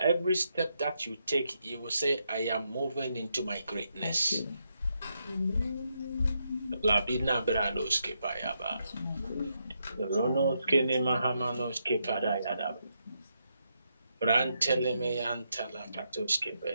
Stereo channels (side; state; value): both; inverted; correlation -0.81